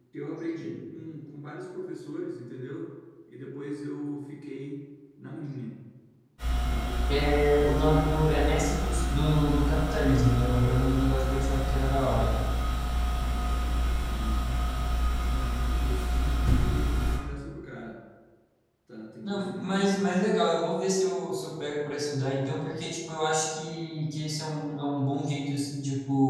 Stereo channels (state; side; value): identical; both; correlation 1.00